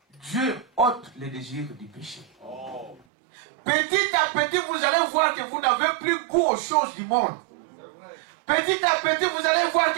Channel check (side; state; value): left; drops out; at 3.0 s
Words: Dieu ôte les désirs du péché. Petit à petit, vous allez voir que vous n'avez plus goût aux choses du monde. Petit à petit, vous allez voir